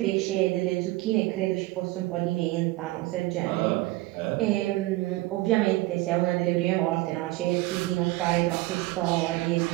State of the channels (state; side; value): quieter; left; 19.4 dB